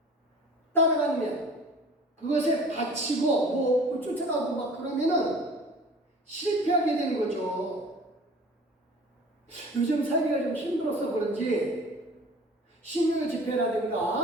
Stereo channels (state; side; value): normal; both; correlation 0.45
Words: 따라가면 그것에 바치고 쫓아가고 막 그러면은 실패하게 되는 거죠. 요즘 살기가 좀 힘들어서 그런지 신유